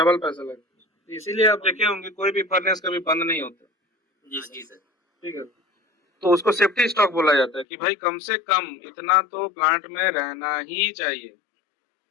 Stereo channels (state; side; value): drops out; right; at 7.7 s